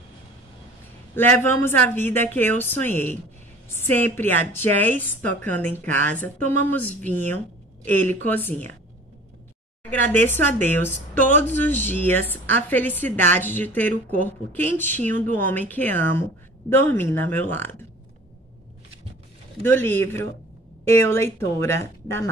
Levamos a vida que eu sonhei. Sempre há jazz tocando em casa, tomamos vinho, ele cozinha. Agradeço a Deus todos os dias a felicidade de ter o corpo quentinho do homem que amo dormindo ao meu lado. Do livro Eu, Leitora, da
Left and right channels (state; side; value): normal; both; correlation 0.45